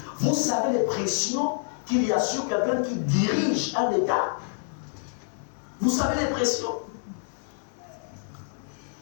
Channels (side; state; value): right; silent; 60 dB below the other